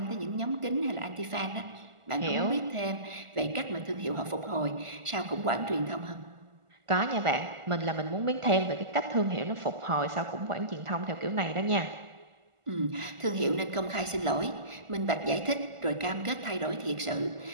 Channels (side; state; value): left; late; 1.4 ms